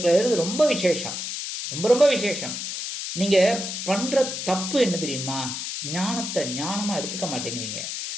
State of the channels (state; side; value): noise; left; hiss, 5 dB below the sound